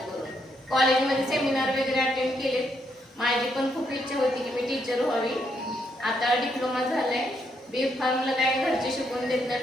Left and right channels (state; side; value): normal; both; correlation 0.76